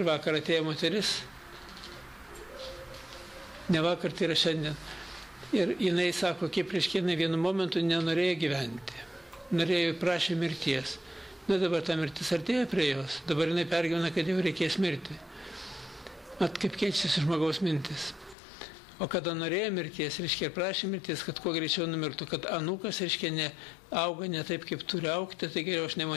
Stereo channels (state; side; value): drops out; right; at 18.4 s